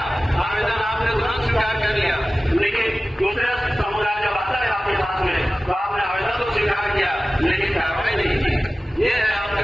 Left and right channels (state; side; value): normal; both; correlation 0.96